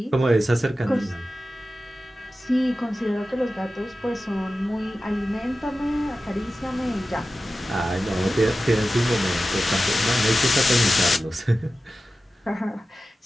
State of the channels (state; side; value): normal; both; correlation 0.94